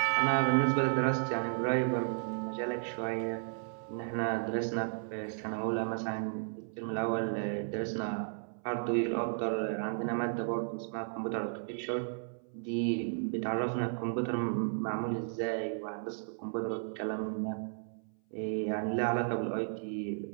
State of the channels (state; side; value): silent; left; 55 dB below the other